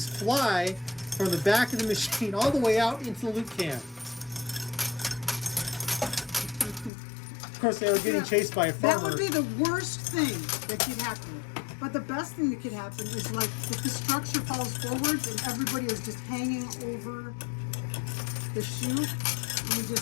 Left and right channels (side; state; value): right; drops out; at 6.9 s